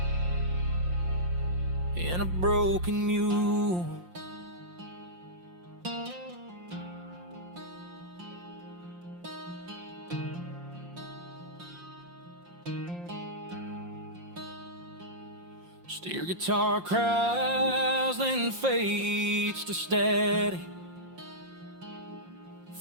in a broken mule. Steer guitar cries, then fades to steady.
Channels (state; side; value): late; left; 5.7 ms